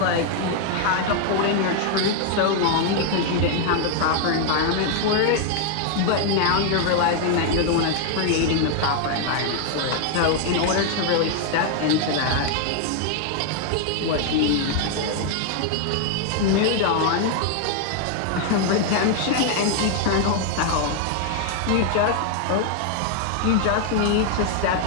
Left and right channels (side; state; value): both; different; correlation 0.00